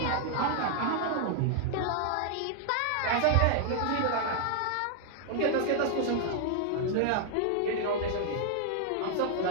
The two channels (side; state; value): both; different; correlation 0.00